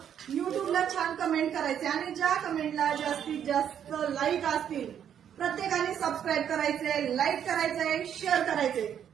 युट्यूबला छान कमेंट करायचे आणि ज्या कमेंटला जास्तीत जास्त लाईक असतील प्रत्येकाने सबस्क्राईब करायचे, लाईक करायचंय, शेअर करायचे.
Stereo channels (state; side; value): quieter; left; 9.1 dB